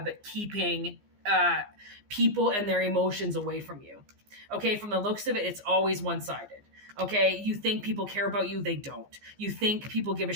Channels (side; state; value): left; late; 15 ms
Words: keeping people and their emotions away from you. Okay, from the looks of it, it's always one-sided. Okay, you think people care about you, they don't. You think people give a